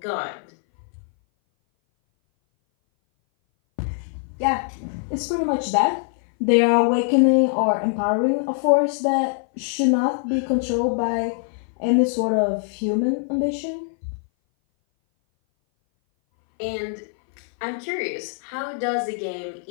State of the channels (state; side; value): silent; right; 59 dB below the other